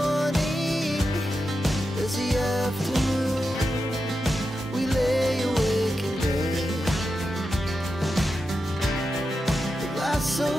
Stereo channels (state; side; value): normal; both; correlation 0.89